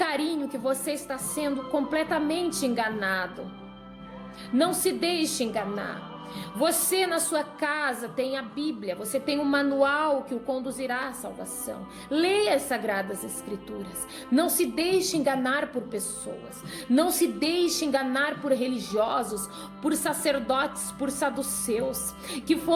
que você está sendo completamente enganado. Não se deixe enganar. Você na sua casa tem a Bíblia, você tem um manual que o conduzirá à salvação. Leia as Sagradas Escrituras. Não se deixe enganar por pessoas. Não se deixe enganar por religiosos, por sacerdotes, por saduceus, que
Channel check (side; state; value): both; identical; correlation 1.00